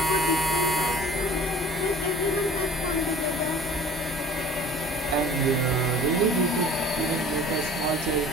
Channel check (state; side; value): normal; both; correlation 0.46